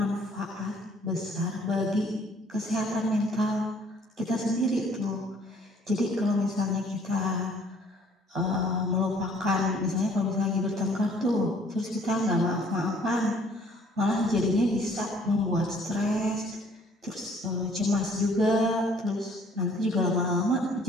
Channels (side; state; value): both; normal; correlation 0.59